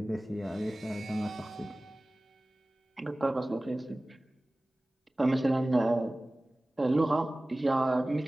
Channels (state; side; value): normal; both; correlation 0.98